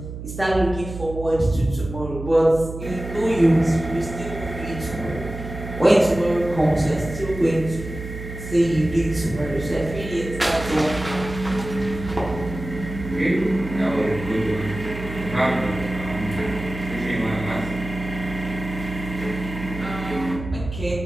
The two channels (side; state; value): right; noise; hum, 9 dB below the sound